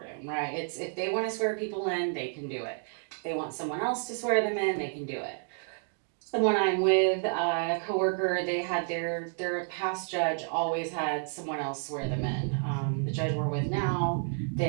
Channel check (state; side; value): silent; left; 58 dB below the other